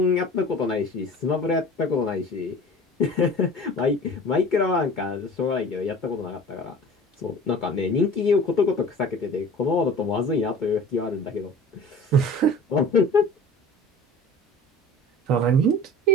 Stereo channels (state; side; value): normal; both; correlation 0.41